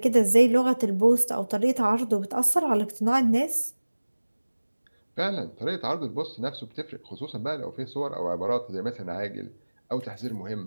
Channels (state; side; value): inverted; both; correlation -1.00